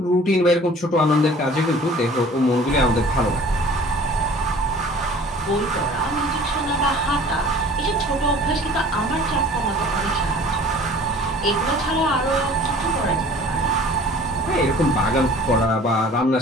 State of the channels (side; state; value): both; normal; correlation 0.48